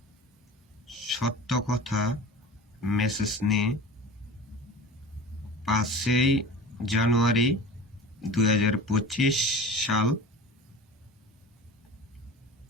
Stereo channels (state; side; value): normal; both; correlation 0.37